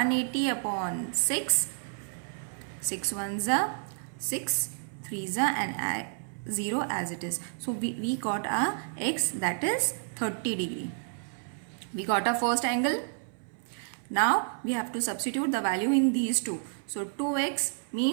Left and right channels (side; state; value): left; silent; 58 dB below the other